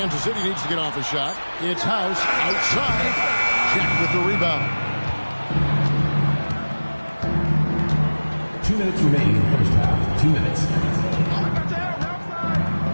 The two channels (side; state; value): both; inverted; correlation -1.00